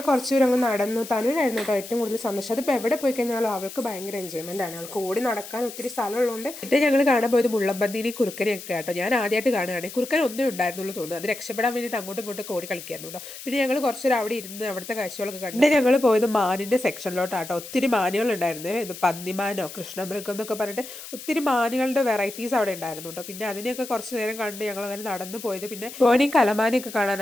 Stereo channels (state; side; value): noise; left; hiss, 13 dB below the sound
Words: കുറച്ച് ദൂരം അങ്ങ് നടന്നു. തനുവിനായിരുന്നു കേട്ടോ ഏറ്റവും കൂടുതൽ സന്തോഷം. അതിപ്പോൾ എവിടെ പോയി കഴിഞ്ഞാലും അവൾക്ക് ഭയങ്കര എൻജോയ്മെൻ്റ് ആണ്. അവൾക്ക് ഓടി നടക്കാൻ ഒത്തിരി സ്ഥലമുള്ളതുകൊണ്ട്. എന്നിട്ട് ഞങ്ങൾ കാണാൻ പോയത് മുള്ളമ്പന്നീനി കുറുക്കനെയൊക്കെ കേട്ടോ. ഞാൻ ആദ്യമായിട്ട് കാണുകയാണ്. കുറുക്കൻ ഒന്നേ ഉണ്ടായിരുന്നുള്ളൂ തോന്നുന്നു. അത് രക്ഷപ്പെടാൻ വേണ്ടിയിട്ട് അങ്ങോട്ടും ഇങ്ങോട്ടും ഓടി കളിക്കാറുണ്ടോ. പിന്നെ ഞങ്ങൾ കുറച്ചൊരു അവിടെ ഇരുന്ന് അവിടുത്തെ കാഴ്ചകളൊക്കെ കണ്ടു. പിന്നെ ഞങ്ങൾ പോയത് മാനിൻ്റെ സെക്ഷനിലോട്ടാട്ടോ. ഒത്തിരി മാനുകളുണ്ടായിരുന്നു. ഇത് പന്നിമാനോ കൃഷ്ണമൃഗം എന്നൊക്കെ പറഞ്ഞിട്ട് ഒത്തിരി മാനുകളുടെ വെറൈറ്റീസ് അവിടെ ഉണ്ടായിരുന്നു കേട്ടോ. പിന്നെ അതിനെയൊക്കെ കുറച്ച് നേരം കണ്ട് ഞങ്ങൾ അങ്ങനെ നടന്നു പോയത്. പിന്നെ പോയി കലമാനയൊക്കെ